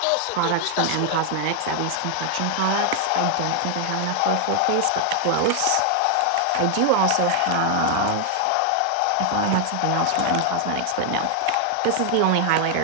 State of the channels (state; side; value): different; both; correlation 0.00